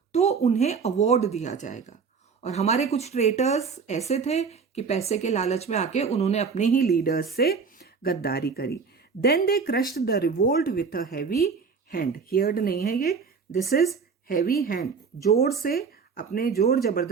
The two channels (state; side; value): quieter; left; 5.4 dB